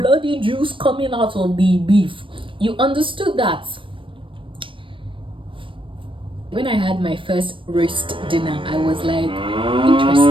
juice coming out of the beef. You understood that. When I had my first roast dinner, I was like,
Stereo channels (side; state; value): left; late; 0.25 ms